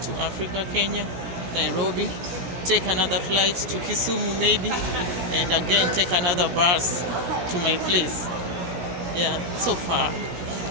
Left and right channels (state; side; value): late; left; 16 ms